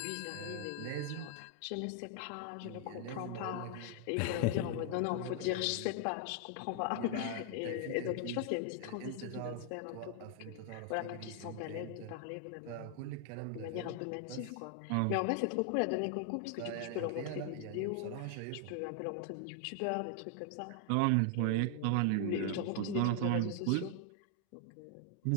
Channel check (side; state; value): both; different; correlation 0.00